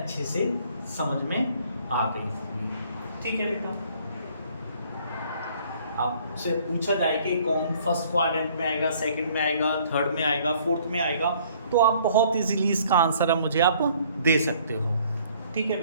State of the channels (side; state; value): both; inverted; correlation -0.59